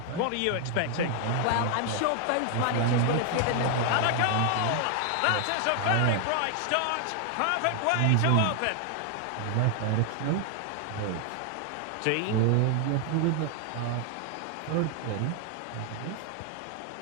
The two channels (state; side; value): different; both; correlation 0.00